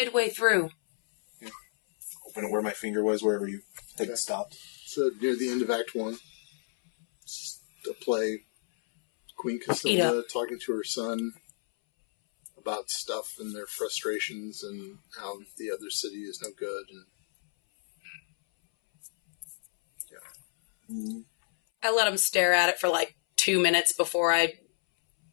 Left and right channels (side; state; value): right; silent; 58 dB below the other